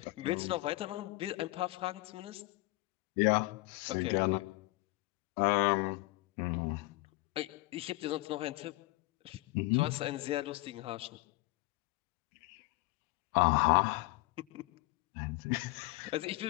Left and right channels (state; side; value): quieter; right; 21.8 dB